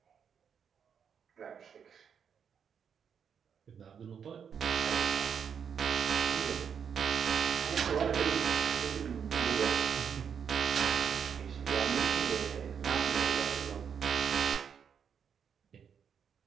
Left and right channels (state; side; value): quieter; left; 7.3 dB